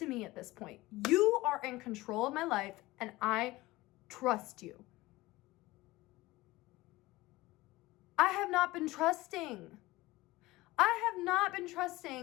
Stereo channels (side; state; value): right; quieter; 19.4 dB